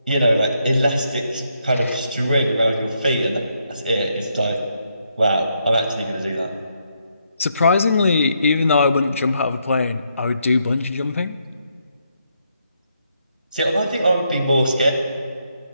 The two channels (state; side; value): inverted; both; correlation -0.77